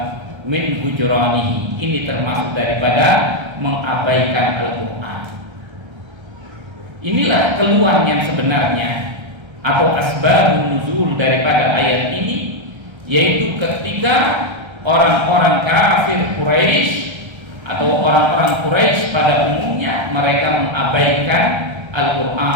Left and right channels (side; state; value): left; late; 1.3 ms